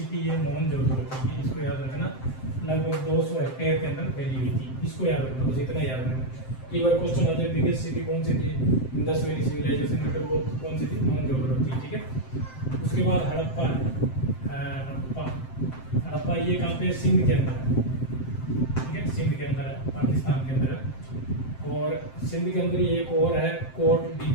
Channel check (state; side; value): late; right; 7.7 ms